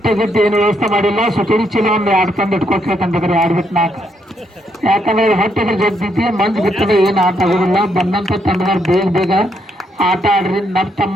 ಗಟ್ಟಿ ಏನು ವ್ಯವಸ್ಥೆ ಮಾಡಿಲ್ಲ ಸುತೇರಿ ಚೀಲ ಒಂದು 2 ತಂದು ಇಟ್ಕೊಳ್ಬೇಕಂತಂದ್ರೆ 2 ಬಿಟ್ಟು 4 ಯಾಕಂದ್ರೆ ಹೊಟ್ಟೆಗೆ ಜಗ್ತೈತಿ ಮಂಜು ಬಿಟ್ಟರೆ ಏನು ಆಟ ಆಗೋದಿಲ್ಲ ಬಂದಂತ ತಂಡದವ್ರು ಬೇಗ ಆಟ ಆಡ್ರಿ ತಮ್ಮ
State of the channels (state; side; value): normal; both; correlation 0.75